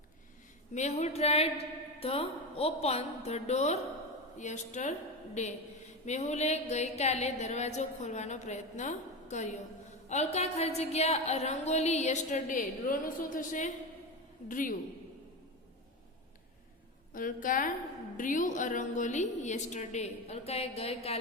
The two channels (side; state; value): both; normal; correlation 0.20